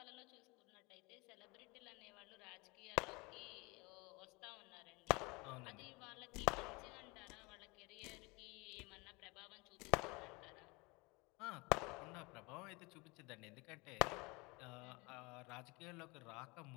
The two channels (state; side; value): quieter; right; 26.1 dB